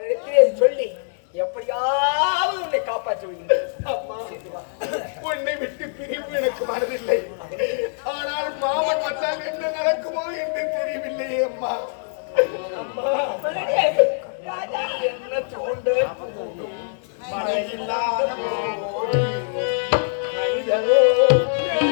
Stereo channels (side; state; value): right; silent; digital silence